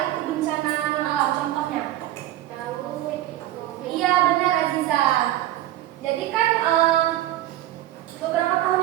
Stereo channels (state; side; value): quieter; left; 14.1 dB